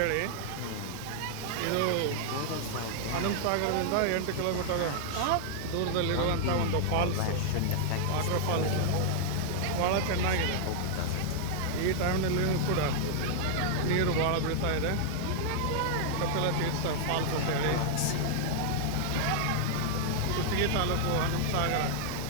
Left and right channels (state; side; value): different; both; correlation -0.01